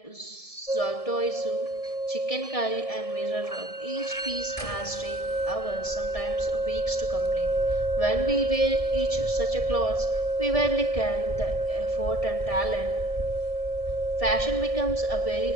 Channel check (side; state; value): right; late; 1.7 ms